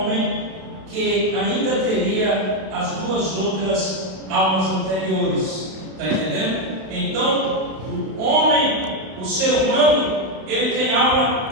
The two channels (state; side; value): late; left; 32 ms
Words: que ainda teria as 2 outras almas anteriores. Está entendendo? Então, o homem, o ser humano, ele tem alma